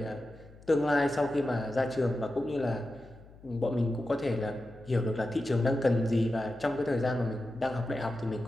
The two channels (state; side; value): noise; left; hum, 22 dB below the sound